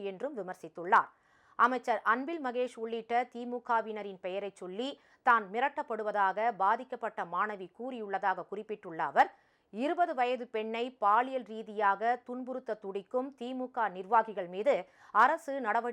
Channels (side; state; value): both; identical; correlation 1.00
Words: என்றும் விமர்சித்துள்ளார். அமைச்சர் அன்பில் மகேஷ் உள்ளிட்ட திமுகவினரின் பெயரை சொல்லி தான் மிரட்டப்படுவதாக பாதிக்கப்பட்ட மாணவி கூறியுள்ளதாக குறிப்பிட்டுள்ள அவர், 20 வயது பெண்ணை பாலியல் ரீதியாக துன்புறுத்த துடிக்கும் திமுக நிர்வாகிகள் மீது அரசு